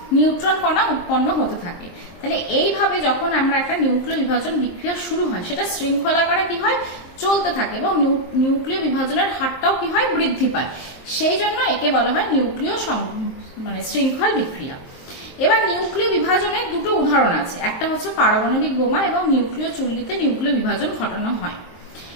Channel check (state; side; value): late; right; 23 ms